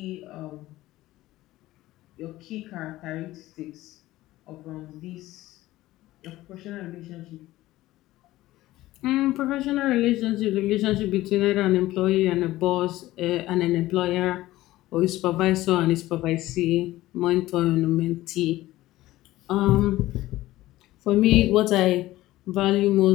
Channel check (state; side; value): quieter; right; 16.6 dB